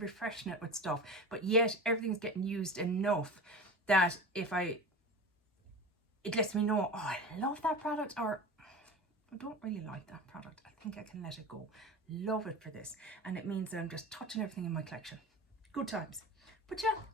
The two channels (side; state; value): both; normal; correlation 0.31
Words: it with stuff, but yet everything's getting used enough that it lets me know, oh, I love that product, or I don't really like that product. I think I can let it go. Love it for this. And it means that I'm just touching everything in my collection. Good times. But yeah,